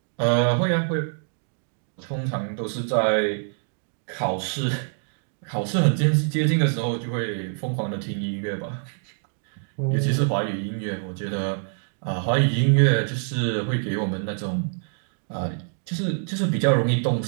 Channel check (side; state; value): left; silent; digital silence